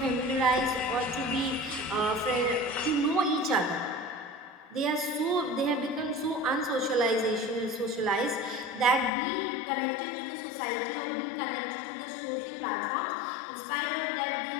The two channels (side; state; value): right; drops out; at 9.1 s